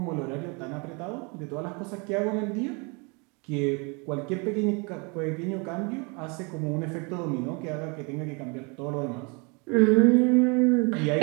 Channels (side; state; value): left; quieter; 31.3 dB